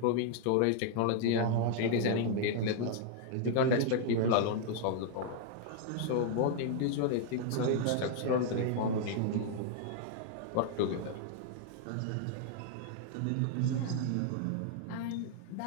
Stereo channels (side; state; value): both; different; correlation -0.01